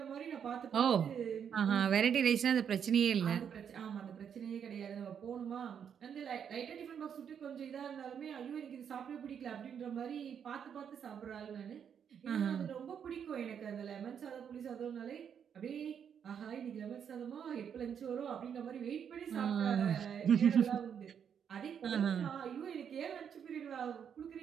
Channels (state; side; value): quieter; left; 7.9 dB